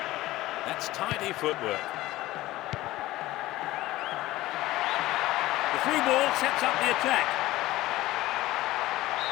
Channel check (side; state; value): right; quieter; 17.1 dB